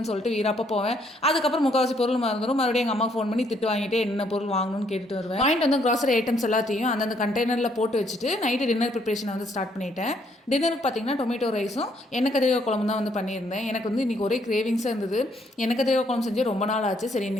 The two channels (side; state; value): both; normal; correlation 0.69